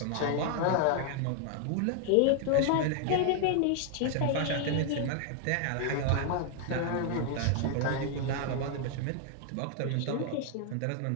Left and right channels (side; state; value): both; different; correlation 0.00